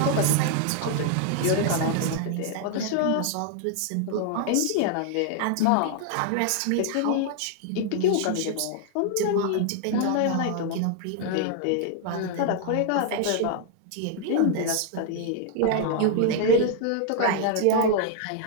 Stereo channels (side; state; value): both; different; correlation 0.00